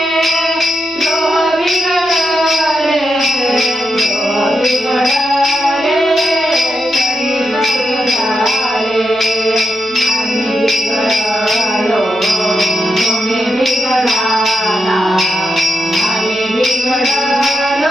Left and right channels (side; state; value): left; noise; hum, 27 dB below the sound